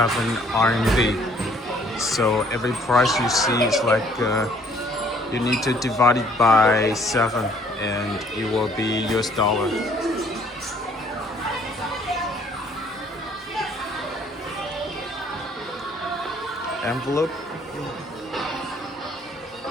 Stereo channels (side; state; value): both; normal; correlation 0.61